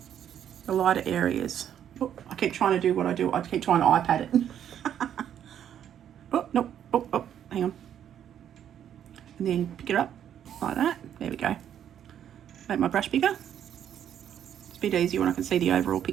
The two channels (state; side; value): quieter; left; 9.7 dB